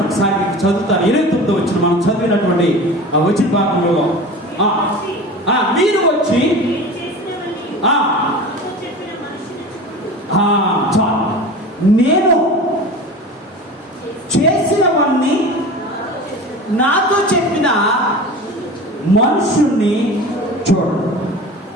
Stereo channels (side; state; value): both; normal; correlation 0.34